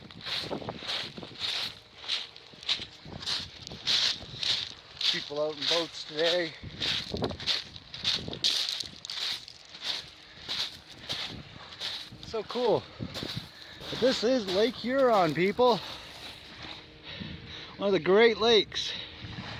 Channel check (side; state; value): both; identical; correlation 1.00